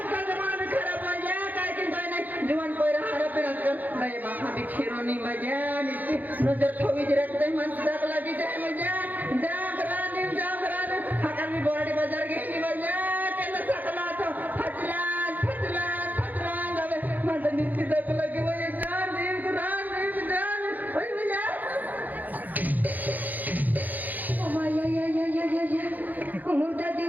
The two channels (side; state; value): left; late; 0.083 ms